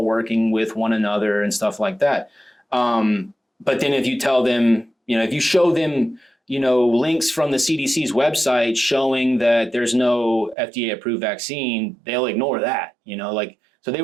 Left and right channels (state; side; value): drops out; left; at 10.6 s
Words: working with one another and stuff like that. But then if you tell them, if you show them, links from the CDC's website showing that there's no FDA approved vaccine, they'll ignore that, so they